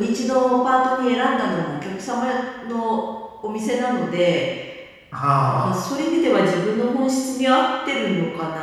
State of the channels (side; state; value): both; identical; correlation 1.00